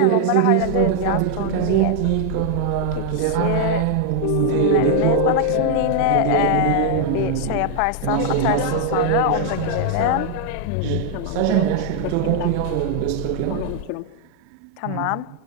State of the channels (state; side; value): different; both; correlation 0.00